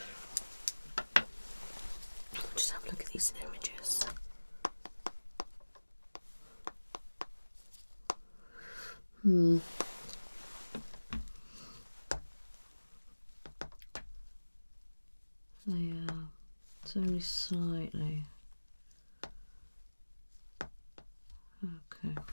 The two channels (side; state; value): both; inverted; correlation -1.00